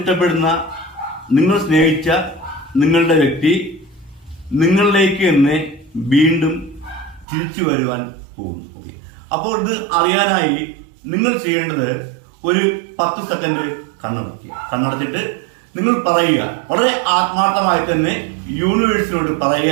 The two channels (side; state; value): left; drops out; at 7.2 s